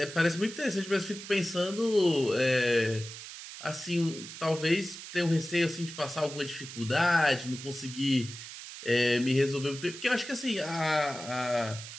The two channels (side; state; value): right; noise; hiss, 12 dB below the sound